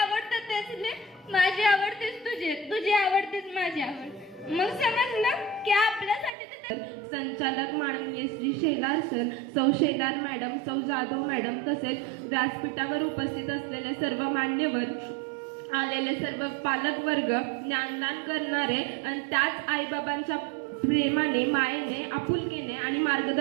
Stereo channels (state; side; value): drops out; left; at 6.3 s